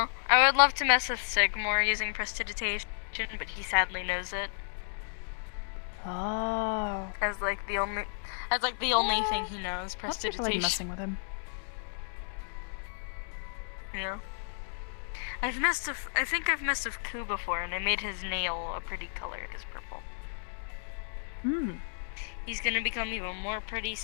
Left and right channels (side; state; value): right; silent; digital silence